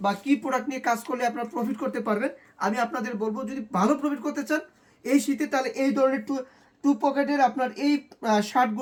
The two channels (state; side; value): identical; both; correlation 1.00